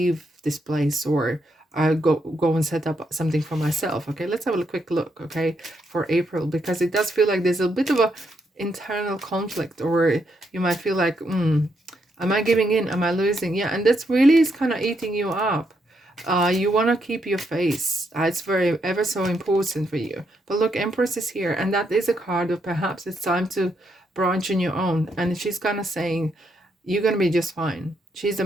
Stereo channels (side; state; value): both; normal; correlation 0.78